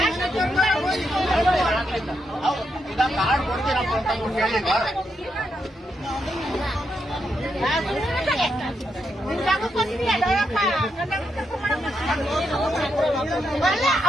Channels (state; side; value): normal; both; correlation 0.82